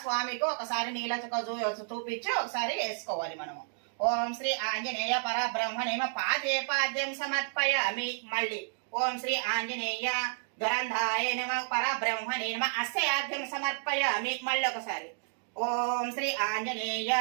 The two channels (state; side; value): silent; left; digital silence